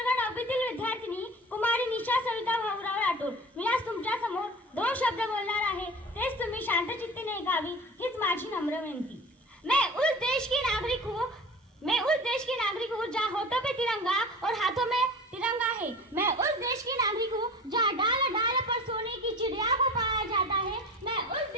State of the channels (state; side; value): normal; both; correlation 0.37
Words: 9वीतील विद्यार्थिनी कुमारी निशा सविता भाऊराव राठोड. मी आज तुमच्या समोर 2 शब्द बोलणार आहे. तेच तुम्ही शांतचित्तीने ऐकावी हीच माझी नम्र विनंती. मैं उस देश की नागरिक हूँ जहाँ होठों पे तिरंगा और हाथों में तिरंगा है. मैं उस देश की नागरिक हूँ जहाँ डाल डाल पर सोने की चिड़िया को पाया जाता है. मैं उस